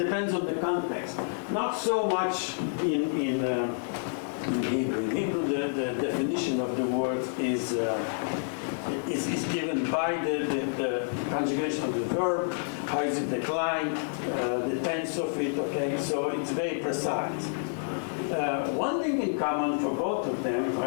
on the context. Not so much in Hebrew. In Hebrew, the definition of the word is given by the conjugation of the verb, how is it declined, the tense of it, okay? So it's very precise. One thing in common for both of them,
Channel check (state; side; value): silent; right; digital silence